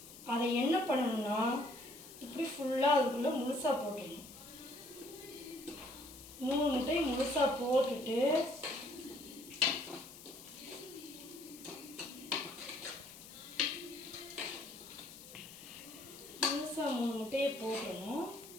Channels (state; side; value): noise; left; hiss, 16 dB below the sound